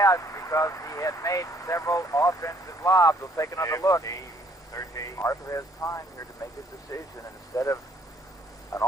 because he had made several offensive lobs. We'll take another look. 13. Arthur has time here to make his decision, and instead of an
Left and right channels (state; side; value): normal; both; correlation 0.64